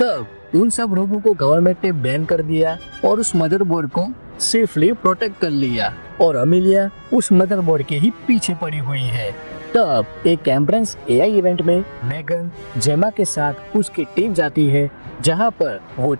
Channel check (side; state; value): both; inverted; correlation -1.00